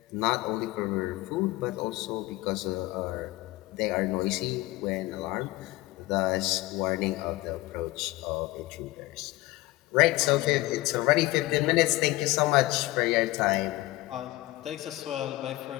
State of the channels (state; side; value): quieter; right; 19.2 dB